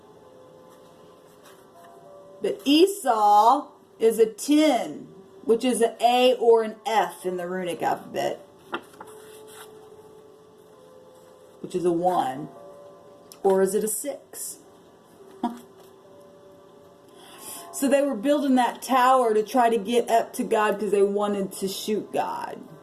But Esau is a 10, which is an A or an F in the runic alphabet, which is a 1. Or is it a 6? So they were building that tower to try to get up to God because they wanted to shoot God.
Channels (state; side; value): identical; both; correlation 1.00